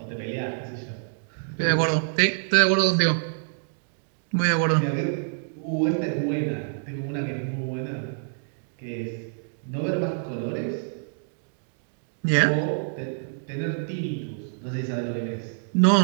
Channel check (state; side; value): silent; left; digital silence